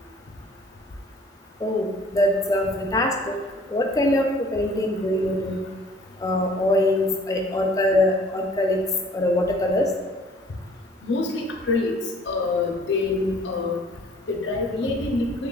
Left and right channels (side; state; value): both; normal; correlation 0.54